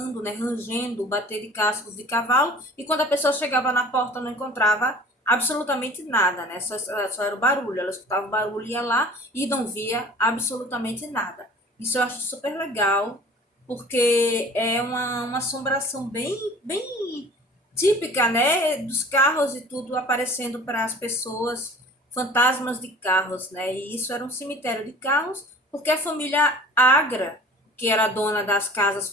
né, rangendo, bater de cascos de cavalo, e quando a pessoa chegava na porta não encontrava absolutamente nada, né? Só era o barulho, ela escutava o barulho, ia lá e não via absolutamente nada. Isso eu acho super legal, porque é uma assombração bem típica, né, dos carros e tudo aparecendo para as pessoas, fantasmas de carros, né? E isso era um cemitério de carros, porque a família Agra, que era dona das casas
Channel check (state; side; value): normal; both; correlation 0.45